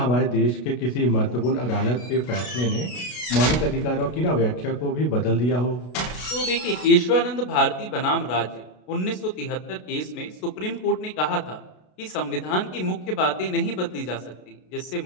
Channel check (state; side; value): late; right; 33 ms